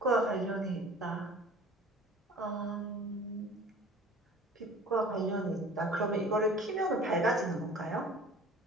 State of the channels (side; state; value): both; normal; correlation 0.45